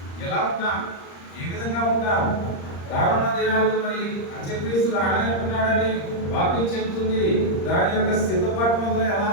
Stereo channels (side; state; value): right; late; 35 ms